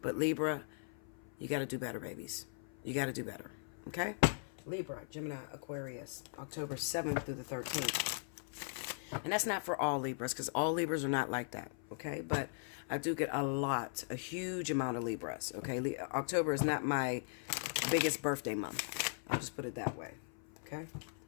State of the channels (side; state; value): right; silent; 52 dB below the other